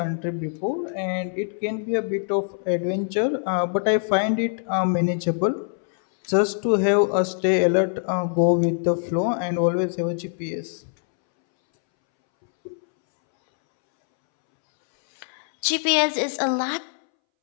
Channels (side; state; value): right; silent; 63 dB below the other